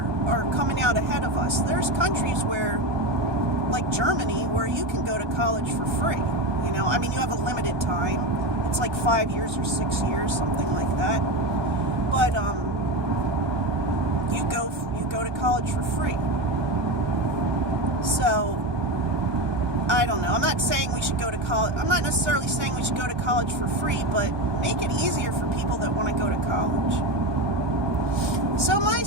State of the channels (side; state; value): left; late; 1.2 ms